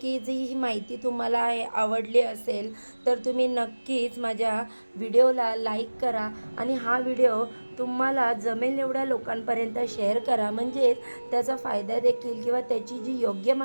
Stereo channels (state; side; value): inverted; both; correlation -1.00